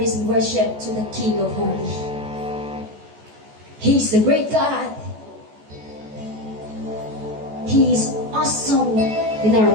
and worship to the King of Holy. He is the great God. He is awesome in our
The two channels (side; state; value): left; late; 14 ms